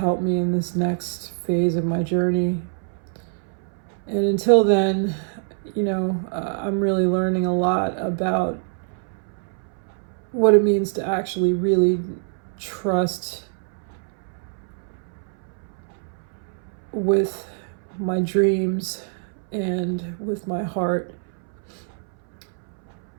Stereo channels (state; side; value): silent; left; 62 dB below the other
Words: me in this next phase of my journey. And until then, I'm really learning a lot about what it means to actually really trust with my dreams and with my heart.